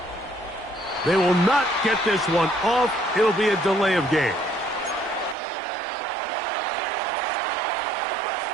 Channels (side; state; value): left; drops out; at 5.4 s